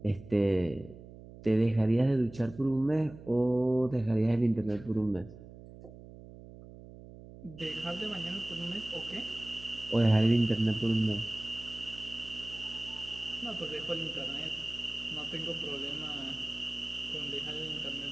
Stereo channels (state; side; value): noise; right; hum, 17 dB below the sound